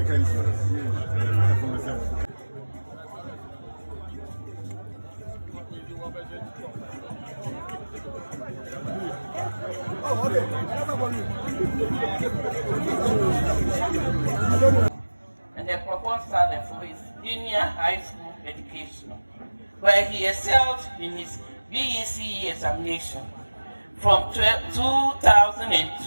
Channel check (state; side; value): inverted; both; correlation -1.00